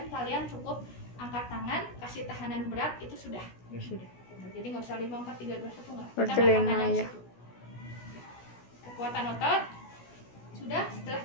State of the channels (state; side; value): late; right; 16 ms